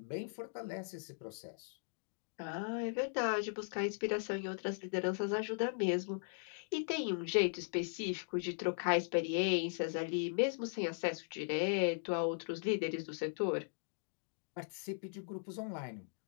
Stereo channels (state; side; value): silent; right; digital silence